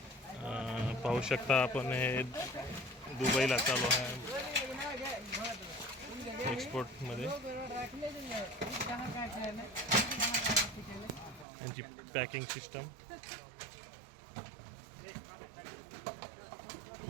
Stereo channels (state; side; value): drops out; left; at 11.5 s